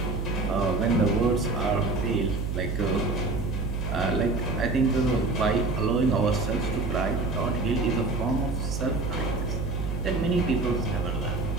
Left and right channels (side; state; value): right; noise; hum, 3 dB below the sound